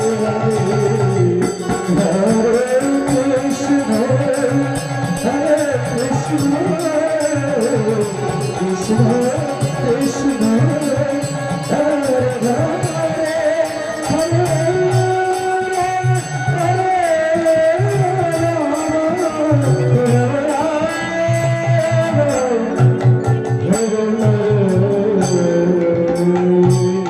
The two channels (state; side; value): identical; both; correlation 1.00